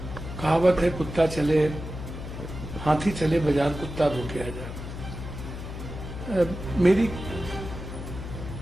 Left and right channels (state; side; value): noise; left; hum, 8 dB below the sound